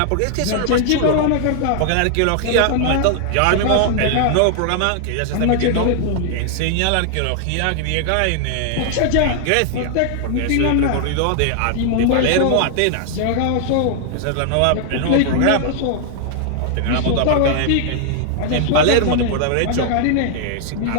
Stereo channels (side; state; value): both; different; correlation 0.00